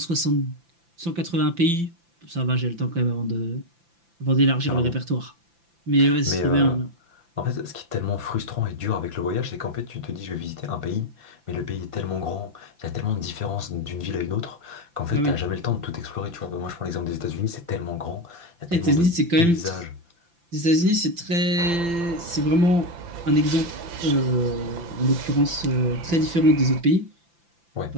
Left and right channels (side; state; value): left; late; 5.9 ms